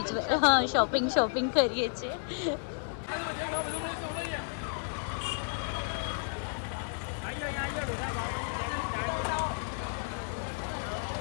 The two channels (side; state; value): right; silent; digital silence